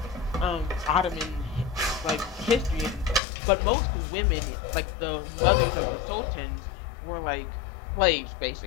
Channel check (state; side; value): drops out; right; at 3.2 s